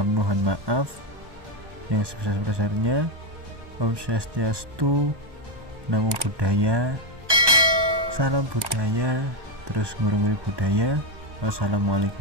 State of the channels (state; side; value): late; left; 1.2 ms